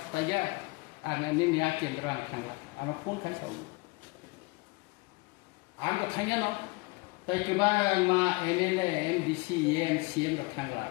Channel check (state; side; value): quieter; right; 25.6 dB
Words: बायगा आं निया केन्द्र आं थांला आं फन खाय साव आं तो थांया न ताय गोबां मा एमएलए एमडीसी एमसीएम रो थांला